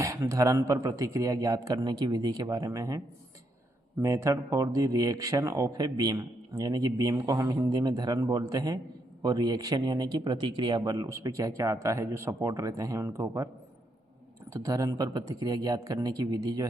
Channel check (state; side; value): normal; both; correlation 0.78